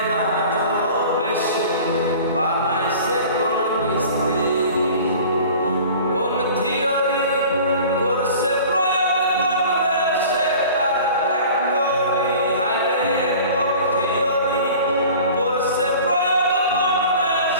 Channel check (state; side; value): inverted; both; correlation -0.43